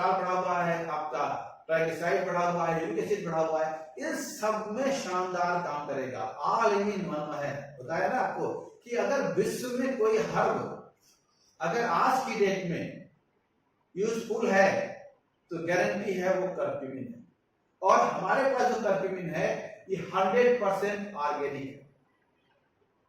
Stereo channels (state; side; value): identical; both; correlation 1.00